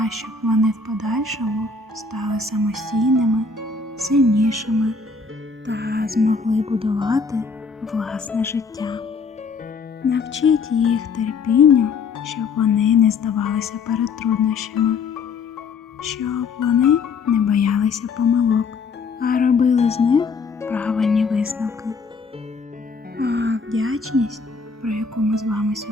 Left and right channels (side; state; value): right; quieter; 4.7 dB